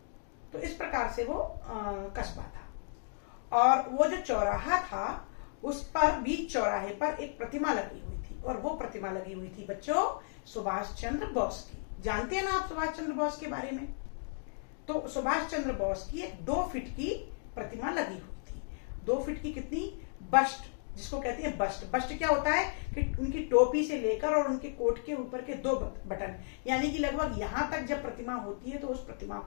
तो इस प्रकार से वो कस्बा था। और वो जो चौराहा था उस पर बीच चौराहे पर एक प्रतिमा लगी हुई थी और वो प्रतिमा लगी हुई थी बच्चों सुभाष चंद्र बोस की। जानते हैं ना आप सुभाष चंद्र बोस के बारे में? तो सुभाष चंद्र बोस की एक 2 फीट की प्रतिमा लगी हुई थी। 2 फीट की कितनी? बस्ट, जिसको कहते हैं बस्ट। बस्ट क्या होता है कि उनकी टोपी से लेकर और उनके कोट के ऊपर के 2 बटन, यानी कि लगभग यहां तक जब प्रतिमा होती है तो उस प्रतिमा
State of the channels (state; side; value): silent; right; digital silence